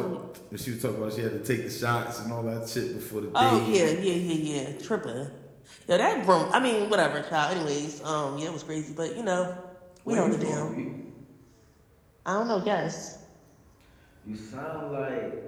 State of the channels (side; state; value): both; identical; correlation 1.00